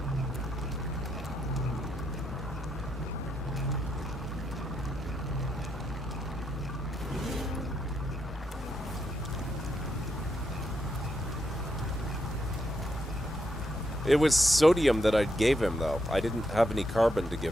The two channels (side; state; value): both; normal; correlation 0.80